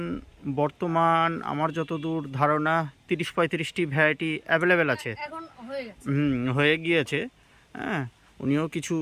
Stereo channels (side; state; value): both; identical; correlation 1.00